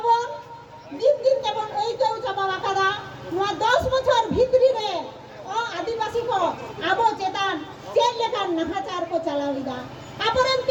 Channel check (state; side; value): identical; both; correlation 1.00